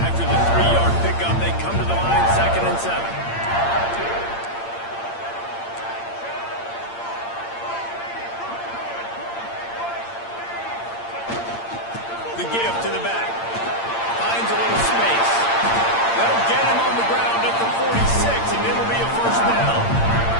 the 3-yard pickup, they come to the line, 2nd and 7. The give to the back. Finds a little space. They'll get him on the ground at the 46, and it'll be a 1st down.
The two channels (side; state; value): right; late; 8.7 ms